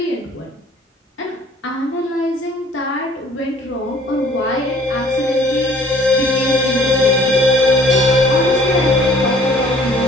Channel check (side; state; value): both; normal; correlation 0.55